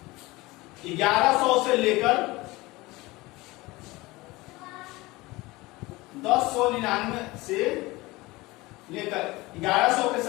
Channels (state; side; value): quieter; right; 21.2 dB